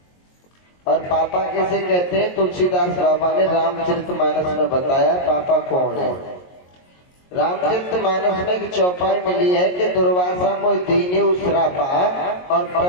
और पापा किसे कहते हैं? तुलसीदास बाबा ने रामचरितमानस में बताया पापा कौन है। रामचरितमानस में एक चौपाई मिली है कि दुर्वासा मोहि दीन्यु श्रापा, और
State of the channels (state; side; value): late; right; 22 ms